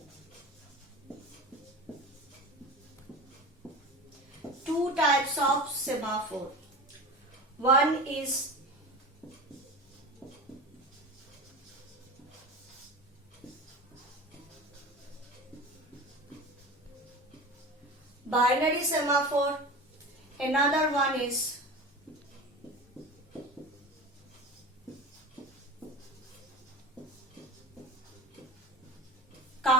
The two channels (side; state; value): both; normal; correlation 0.32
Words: two types of semaphore. One is binary semaphore, another one is